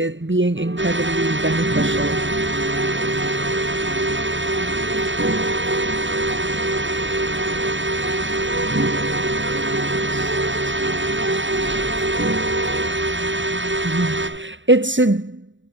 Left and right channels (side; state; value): left; late; 0.55 ms